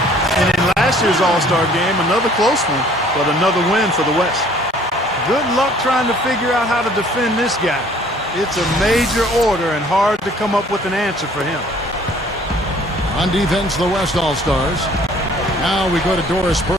And in last year's All-Star game, another close one, but another win for the West. Good luck trying to figure out how to defend this guy. It's a major order and hard to come up with an answer for him. On defense, the West All-Stars. Now we go to Doris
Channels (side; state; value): both; normal; correlation 0.56